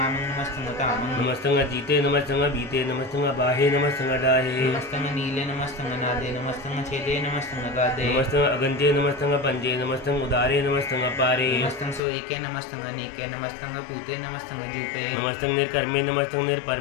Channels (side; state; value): right; drops out; at 12.0 s